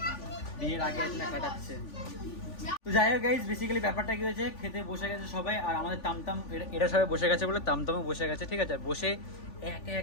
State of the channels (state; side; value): late; right; 3.4 ms